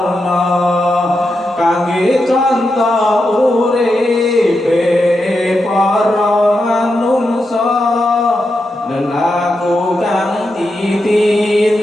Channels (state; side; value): normal; both; correlation 0.86